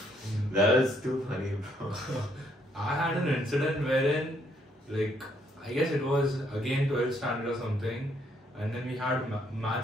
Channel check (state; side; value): normal; both; correlation 0.70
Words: That was too funny, bro. I had an incident wherein, like, I guess it was again 12th standard or something, and then we had